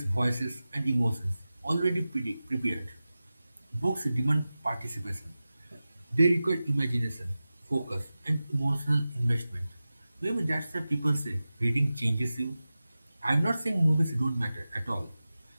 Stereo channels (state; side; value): inverted; both; correlation -0.95